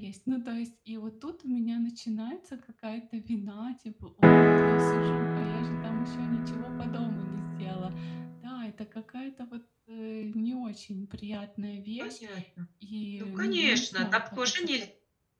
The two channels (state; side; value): identical; both; correlation 1.00